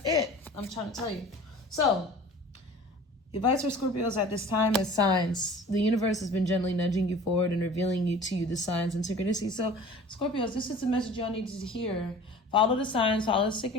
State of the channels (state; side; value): normal; both; correlation 0.43